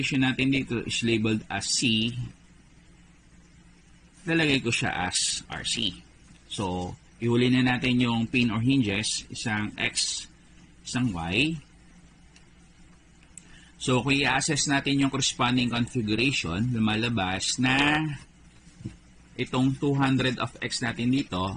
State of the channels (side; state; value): both; identical; correlation 1.00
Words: natin dito is labeled as C, lalagay ko siya as RC. So, ihuli na natin yung pin or hinges, isang X, isang Y. So, kung i-assess natin yung corresponding configuration, lumalabas na itong 200 of X natin dito,